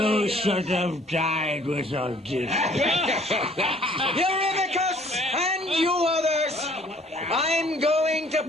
should have died with Odysseus. Eurymachus and you others! I'm going to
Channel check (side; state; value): both; normal; correlation 0.57